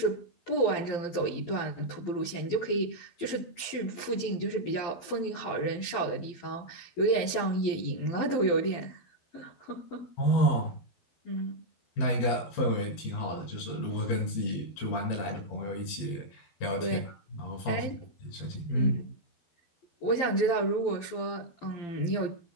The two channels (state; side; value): late; right; 12 ms